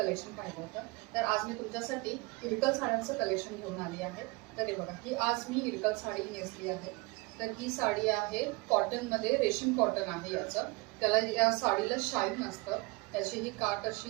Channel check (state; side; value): quieter; left; 25.3 dB